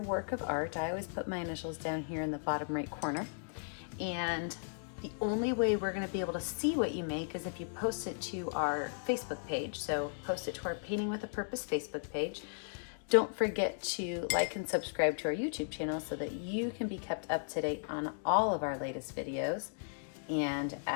work of art. I always put my initials down here in the bottom right corner. And The only way we're going to be able to see what you make is if you post it to our Facebook page. So post it to our Painting with a Purpose Facebook page. Don't forget to like and subscribe to our YouTube channel so that you can be kept up to date on all of our latest videos. And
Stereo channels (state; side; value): silent; right; digital silence